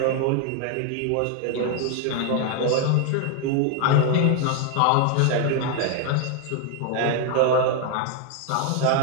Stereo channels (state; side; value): different; both; correlation 0.00